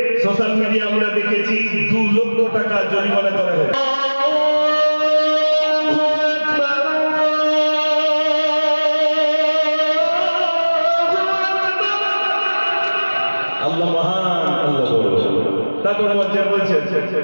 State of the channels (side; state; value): both; inverted; correlation -1.00